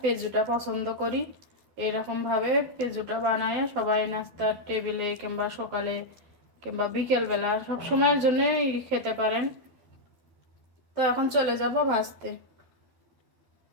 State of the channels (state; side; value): late; left; 12 ms